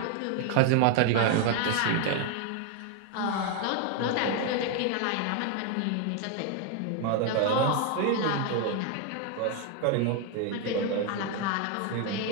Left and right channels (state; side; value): different; both; correlation 0.01